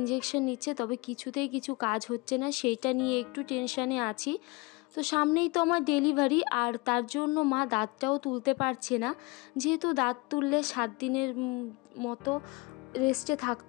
নিচ্ছে, তবে কিছুতেই কিছু কাজ হচ্ছে না, সেইটা নিয়ে একটু টেনশানে আছি। তো সামনেই তো আমার ডেলিভারি, আর তার জন্য মা দাঁতটাও তুলতে পারছে না, যেহেতু দাঁত তুললে 7 দিনের মতো রেস্টে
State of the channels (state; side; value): quieter; right; 25.8 dB